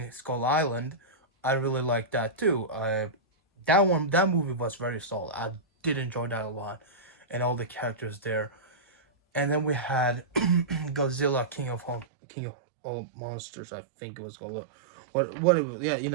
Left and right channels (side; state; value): left; drops out; at 12.1 s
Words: Skull Island, I really liked that too. That movie was very solid. I did enjoy that a lot, and all the characters there. And then we had Godzilla King of all monsters. I think it was called. What it was, yeah, you